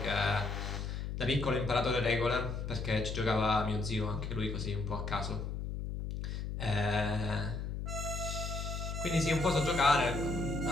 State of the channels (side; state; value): left; noise; hum, 4 dB below the sound